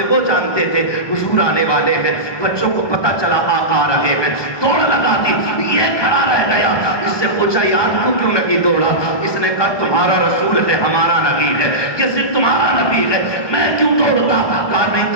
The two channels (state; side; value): late; right; 1.2 ms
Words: وہ جانتے تھے حضور آنے والے ہیں، بچوں کو پتا چلا آ رہے ہیں، دوڑ لگا دی. یہ کھڑا رہ گیا. اس سے پوچھا یار تو کیوں نہیں دوڑا؟ اس نے کہا تمہارا رسول ہے، ہمارا نبی ہے، یہ صرف تمہارا نبی ہے، میں کیوں دوڑتا؟ کہا نہیں